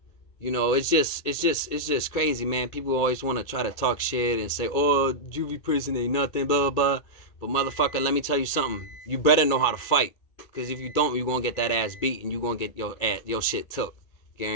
You know, it's just crazy, man. People always want to try to talk shit and say, oh, juvie prison ain't nothing, blah, blah, blah. But motherfucker, let me tell you something. You better know how to fight. Because if you don't, you're going to get that ass beat and you're going to get your shit took.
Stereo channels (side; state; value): right; late; 2.4 ms